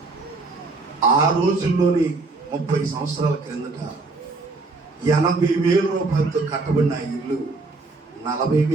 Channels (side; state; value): left; quieter; 3.6 dB